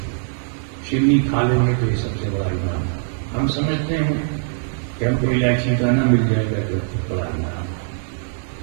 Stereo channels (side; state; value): left; silent; digital silence